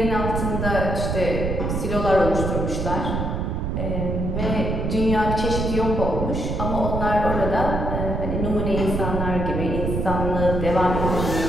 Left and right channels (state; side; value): noise; right; rumble, 1 dB below the sound